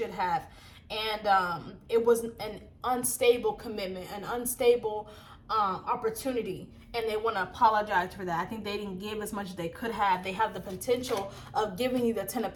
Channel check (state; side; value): identical; both; correlation 1.00